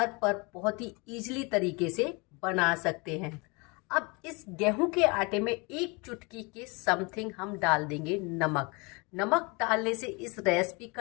पर बहुत ही इजीली तरीके से बना सकते हैं। अब इस गेहूं के आटे में 1 चुटकी के समथिंग हम डाल देंगे नमक। नमक डालने से इस रेसिपी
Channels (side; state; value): right; quieter; 28.9 dB